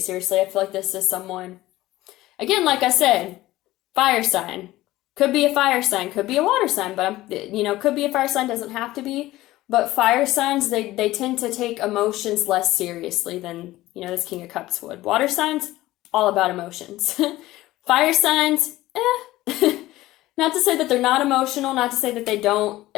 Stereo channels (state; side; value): quieter; right; 16.8 dB